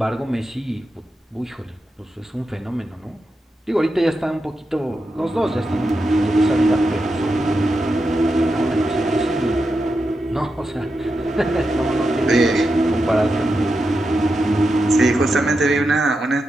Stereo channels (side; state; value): both; normal; correlation 0.88